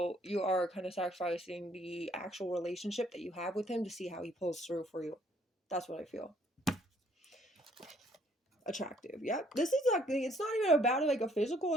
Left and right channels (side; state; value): both; normal; correlation 0.64